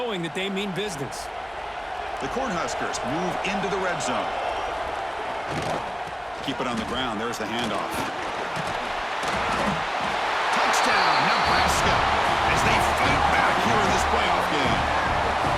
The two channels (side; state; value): both; identical; correlation 1.00